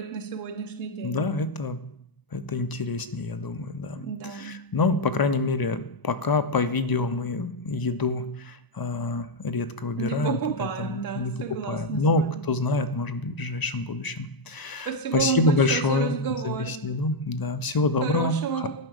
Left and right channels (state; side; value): late; right; 1.0 ms